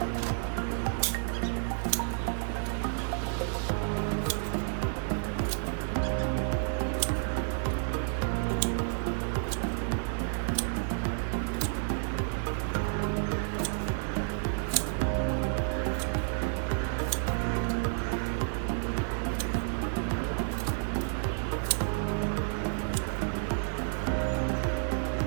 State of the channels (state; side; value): silent; left; digital silence